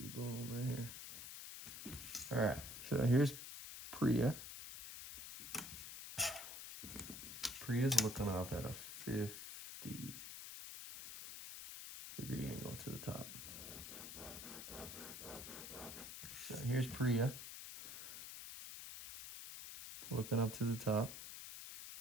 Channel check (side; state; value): left; noise; hiss, 9 dB below the sound